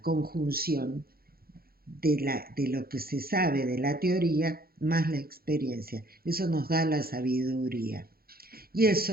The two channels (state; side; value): late; left; 0.44 ms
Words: conjunción de lo que se sabe de la teoría más la experiencia. Eso nos da la sabiduría. Y